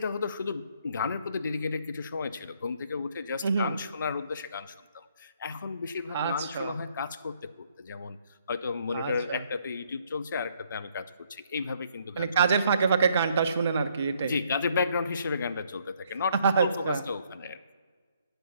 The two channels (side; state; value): both; inverted; correlation -0.68